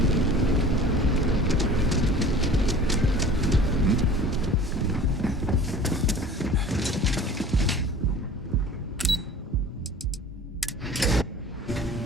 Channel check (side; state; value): both; normal; correlation 0.43